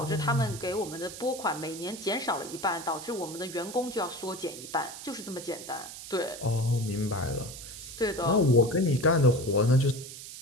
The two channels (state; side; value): noise; right; hiss, 12 dB below the sound